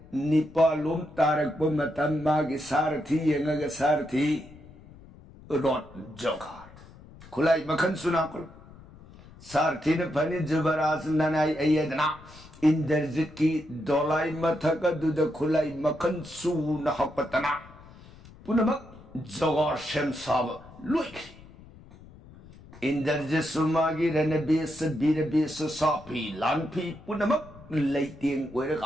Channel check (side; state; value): left; noise; rumble, 21 dB below the sound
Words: निपालोम तारक पर मतम मागी सारथी यंगग सारथी रोट जोगार खुलाई मखन सुना करो सारथी ने फनी जुबराज ननाई अयदना इंद्रजित की दोलाई मथक दुद खुलाई मखन सू नहपतना पुनमक जोगार शेम साब लुइक इंद्रजित सुमागी रणबेस बीरबेस सापी लानफी पुनमक लैतेंग